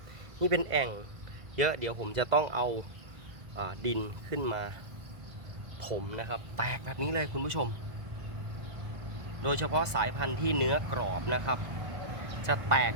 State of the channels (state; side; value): late; left; 2.0 ms